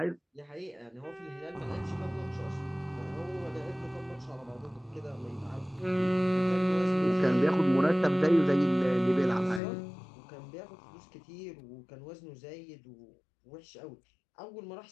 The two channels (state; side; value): drops out; right; at 9.6 s